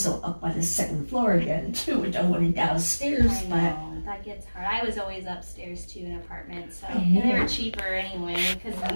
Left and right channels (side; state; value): both; inverted; correlation -1.00